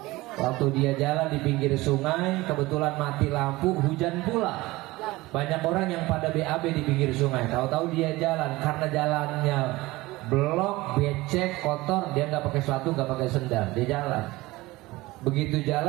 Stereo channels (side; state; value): left; quieter; 20.0 dB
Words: Waktu dia jalan di pinggir sungai, kebetulan mati lampu, hujan pula. Banyak orang yang pada BAB di pinggir sungai. Tahu-tahu dia jalan, karena jalannya blok, becek, kotor, dia nggak pakai sepatu, nggak pakai sendal, dia jalan. Begitu